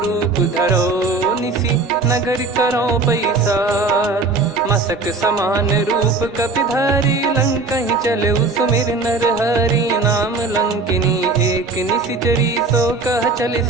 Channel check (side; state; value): left; quieter; 3.8 dB